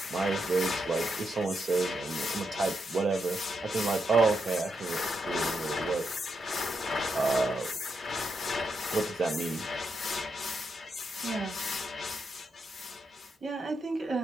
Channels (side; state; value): both; normal; correlation 0.82